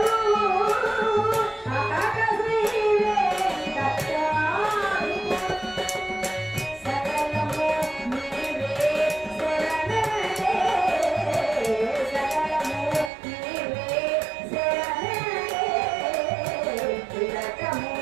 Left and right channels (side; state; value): left; drops out; at 13.1 s